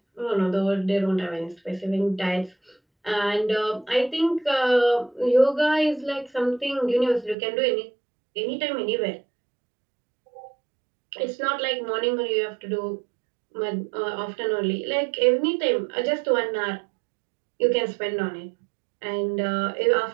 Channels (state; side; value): drops out; left; at 7.4 s